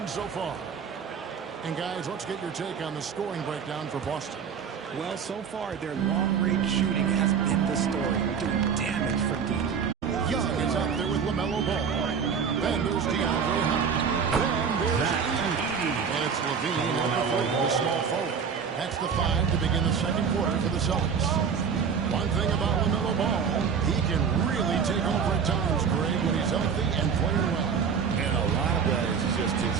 so far. And guys, let's get your take on the scoring breakdown for Boston. Well, so far, their long-range shooting has been the story, doing damage from deep. Young is out there with LaMelo Ball. Then there's DeAndre Hunter. Then there's Edey. And it's Levine on the fight with a small forward. That's the 5 to begin the second quarter for the Celtics. One thing about LaMelo Ball, he can really take over at times, Greg, when he's healthy and playing well. And a lot of that is just his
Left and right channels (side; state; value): left; quieter; 6.5 dB